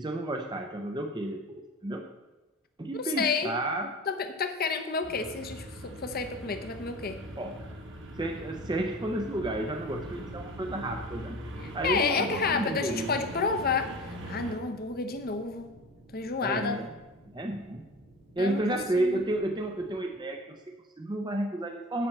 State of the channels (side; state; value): both; normal; correlation 0.37